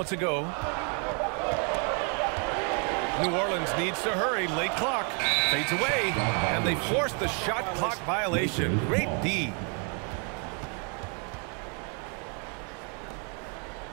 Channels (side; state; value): left; quieter; 38.4 dB